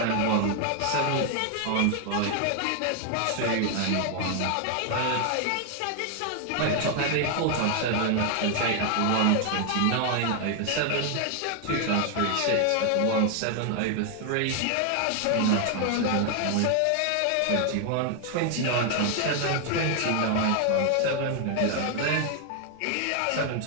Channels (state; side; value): different; both; correlation 0.00